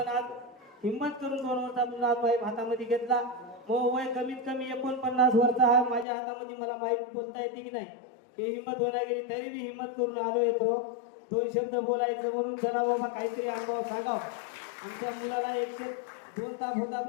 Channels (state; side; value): drops out; right; at 6.1 s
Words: आज हिंमत करून 2 वर्षातून आज वाईफ हातामध्ये घेतला. मग वय कमीत कमी 49 वर्ष आहे माझ्या हातामध्ये. मला माहीत बोलता येते की नाही हे हिंमत होणार गेली, तरी मी हिंमत करून आलो येतो 2 शब्द बोलायचं म्हणून. चला बाबा काहीतरी अनुभव सांगाव. आमच्या मुलाला 102 ताप होता,